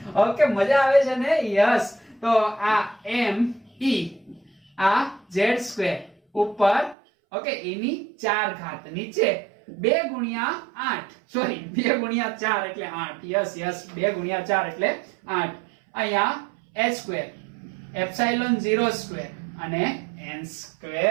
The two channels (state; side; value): drops out; left; at 7.0 s